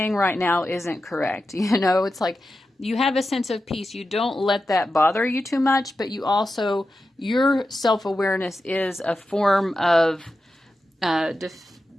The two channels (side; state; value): both; normal; correlation 0.91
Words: right now isn't correct. You know, it's like you have a sense of peace. You don't let that bother you too much, but you also, your self-awareness is a form of